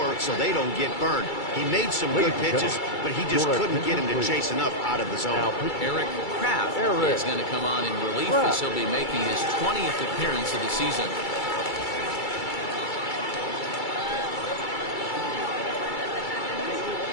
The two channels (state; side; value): late; right; 2.3 ms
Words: so they don't get burned. He made some good pitches, but he just couldn't get him to chase enough out of the zone. Eric Kraft is going to come on in relief as he'll be making his 20th appearance of the season.